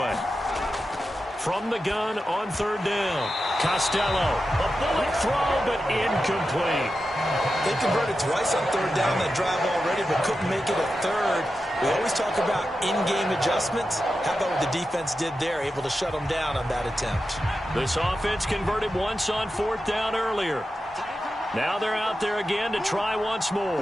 From the gun on 3rd down. Costello. A bullet throw, but incomplete. They converted twice on 3rd down that drive already, but couldn't make it a 3rd. We always talk about in-game adjustments. How about what the defense did there, able to shut them down on that attempt? This offense converted once on 4th down earlier. Now they're out there again to try once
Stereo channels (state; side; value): normal; both; correlation 0.91